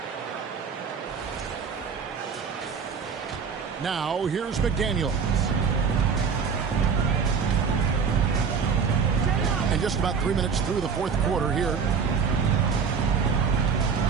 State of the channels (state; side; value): quieter; left; 6.0 dB